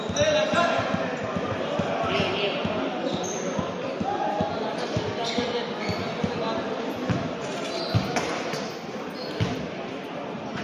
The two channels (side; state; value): both; identical; correlation 1.00